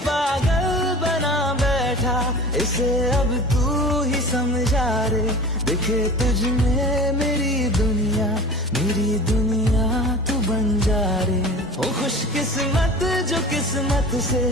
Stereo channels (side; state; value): both; normal; correlation 0.38